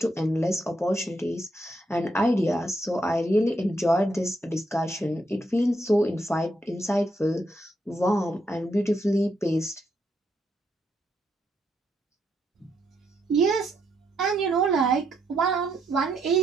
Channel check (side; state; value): both; normal; correlation 0.78